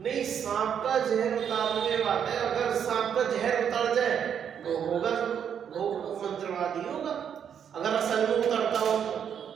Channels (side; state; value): left; quieter; 8.2 dB